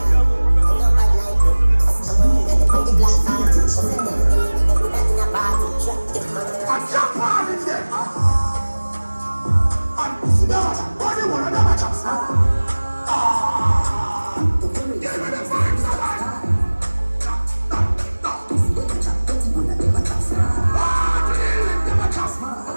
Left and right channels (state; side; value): inverted; both; correlation -1.00